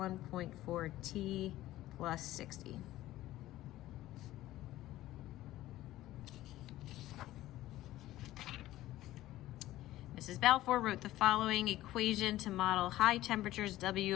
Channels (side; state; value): right; quieter; 15.4 dB